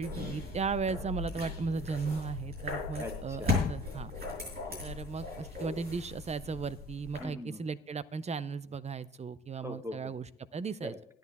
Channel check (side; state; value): both; normal; correlation 0.48